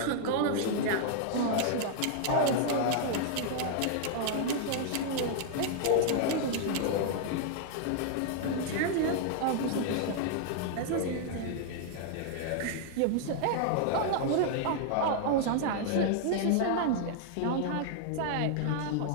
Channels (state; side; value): different; both; correlation 0.00